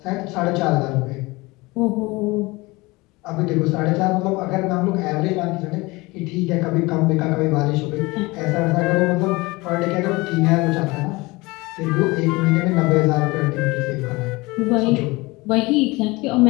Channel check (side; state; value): right; quieter; 22.9 dB